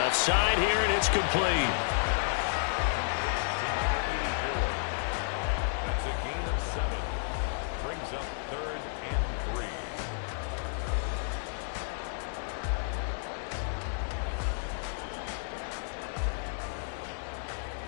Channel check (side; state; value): right; silent; digital silence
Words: side here, and it's complete. That's a gain of 7. Brings up 3rd and 3.